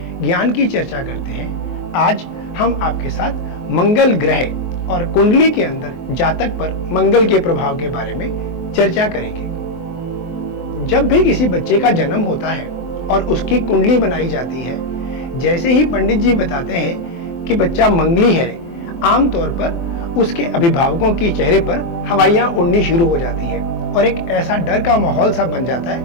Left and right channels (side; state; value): right; late; 23 ms